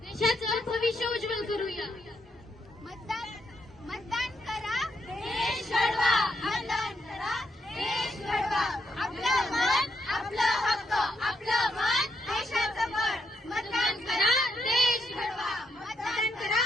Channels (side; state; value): both; normal; correlation 0.79